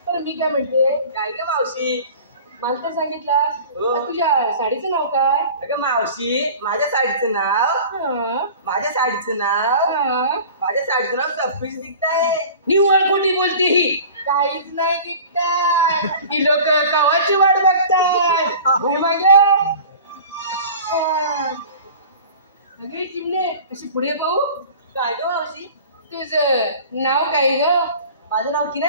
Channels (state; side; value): inverted; both; correlation -0.41